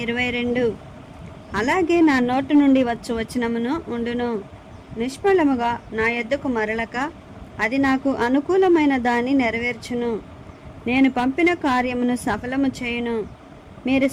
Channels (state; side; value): identical; both; correlation 1.00